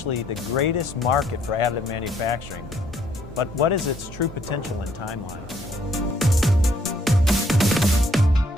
the greatest market for additive manufacturing, but what is its true potential and timeline?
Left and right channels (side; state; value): both; normal; correlation 0.66